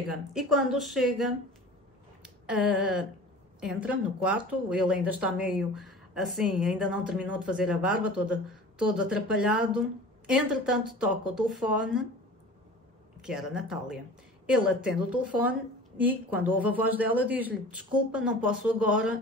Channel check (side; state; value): both; normal; correlation 0.40